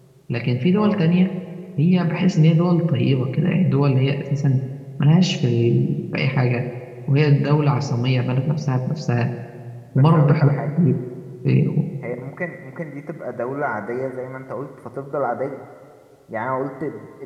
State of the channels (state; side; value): identical; both; correlation 1.00